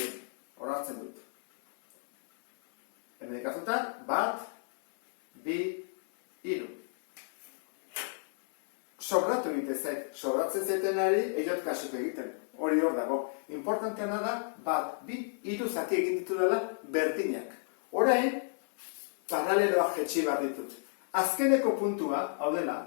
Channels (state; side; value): silent; right; 57 dB below the other